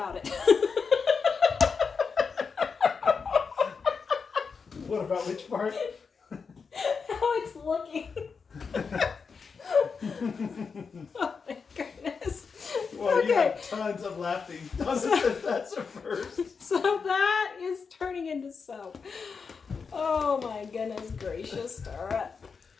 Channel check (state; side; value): quieter; right; 5.4 dB